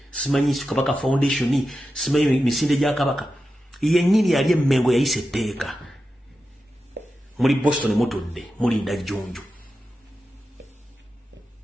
simanyi Kabaka Foundation simanyi misinde gya Kabaka yennyini yali emmengo yayise etteeka muri Boston mutudde mulinda jjunju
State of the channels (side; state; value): both; normal; correlation 0.91